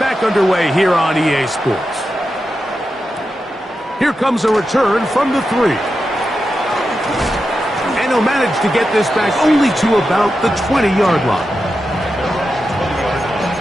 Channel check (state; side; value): normal; both; correlation 0.89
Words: underway here on EA Sports. Here comes a return from the 3. And he'll manage to get this back only to about the 20-yard line.